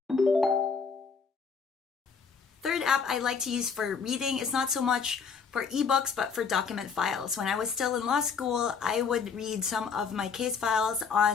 Third app I like to use for reading is not so much for ebooks, but for document files. When I was still in law school, I would read some of my case files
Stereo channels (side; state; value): right; quieter; 5.9 dB